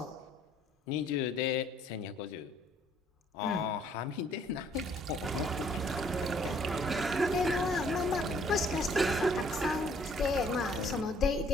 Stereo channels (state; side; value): normal; both; correlation 0.62